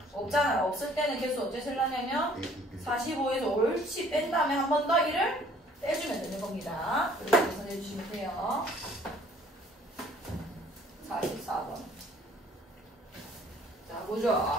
없잖아요. 없을 때는 개수 어째 쓰려냐면 45에서 옳지 뺀 다음에 한 번 더 1을 빼주면 되는 겁니다. 이렇게 계산해 주시면 돼요. 44번. 자,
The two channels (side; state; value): both; normal; correlation 0.57